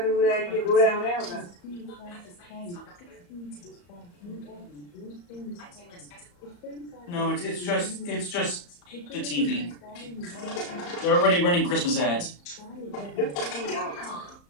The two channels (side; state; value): right; late; 34 ms